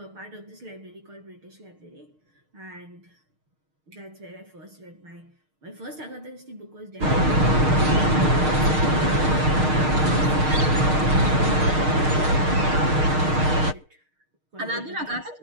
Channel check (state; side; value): late; left; 6.5 ms